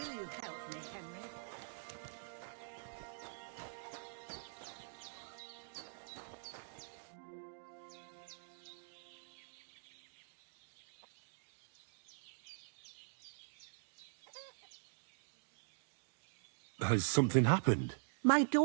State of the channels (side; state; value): left; silent; digital silence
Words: you help me, Henry? Has something happened? My